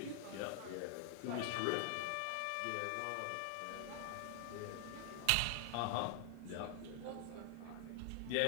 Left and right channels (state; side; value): different; both; correlation 0.00